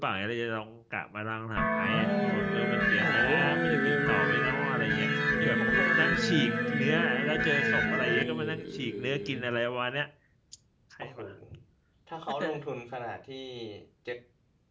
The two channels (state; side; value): identical; both; correlation 1.00